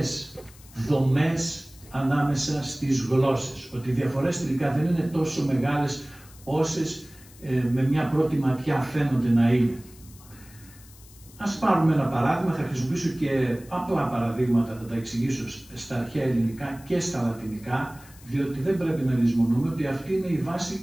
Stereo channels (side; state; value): left; noise; hiss, 23 dB below the sound